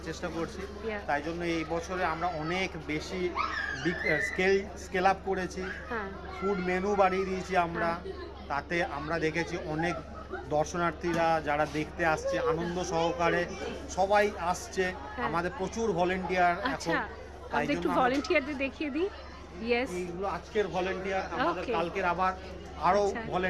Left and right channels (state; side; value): identical; both; correlation 1.00